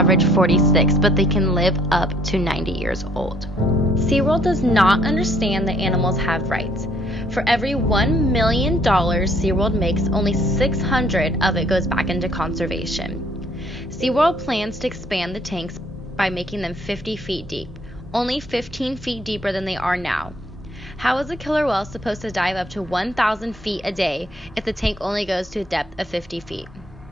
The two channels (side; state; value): both; normal; correlation 0.64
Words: 46, but they can live up to 90 years old. SeaWorld does not understand that animals have rights. For every $1 million SeaWorld makes, only $600 of it goes back into conservation. SeaWorld plans to expand the tanks by making them 50 feet deep, only 15 feet deeper than they are now. How is a killer whale supposed to dive up to 1,000 feet a day if the tank only goes to a depth of 50 feet?